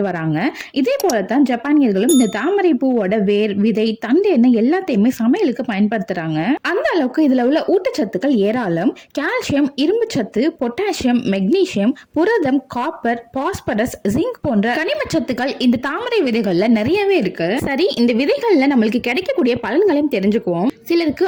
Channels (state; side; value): identical; both; correlation 1.00